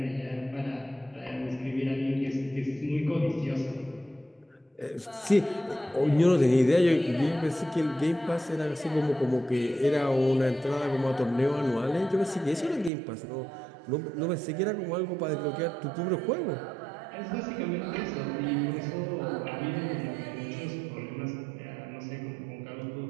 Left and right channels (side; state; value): left; drops out; at 12.9 s